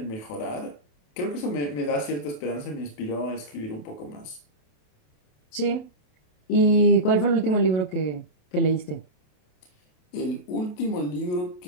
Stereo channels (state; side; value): late; right; 28 ms